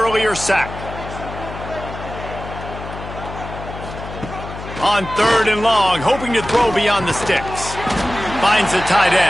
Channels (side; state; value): left; noise; hum, 11 dB below the sound